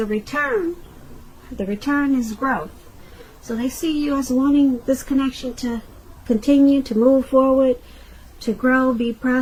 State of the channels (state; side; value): identical; both; correlation 1.00